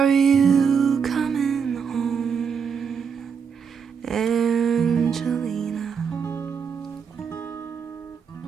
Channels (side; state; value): left; quieter; 6.5 dB